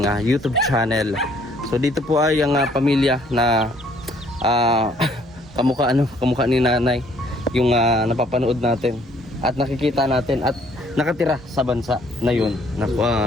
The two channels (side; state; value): both; normal; correlation 0.63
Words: YouTube channel. So dito po ay ang pamilya na kamukha ni nanay yung napapanood natin at nakikita natin at nakatira sa bansa na yun